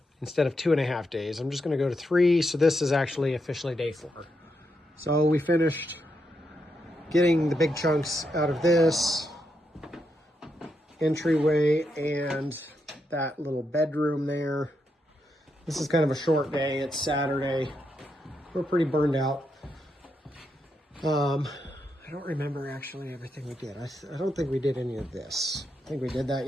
Instead of 2.5 days, I'm just going to go to 3. So this is actually officially day 4. So we finished getting the big chunks out of this entryway and that little bedroom there. This is kind of a short day. It's Saturday. We're pretty burned out. I don't remember actually everything we did. I don't think we did any of this. I think we did that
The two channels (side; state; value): both; normal; correlation 0.82